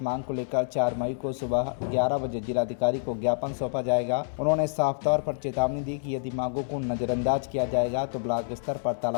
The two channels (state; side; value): silent; right; 60 dB below the other